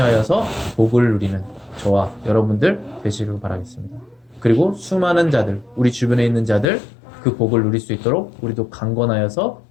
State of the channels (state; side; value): drops out; right; at 6.7 s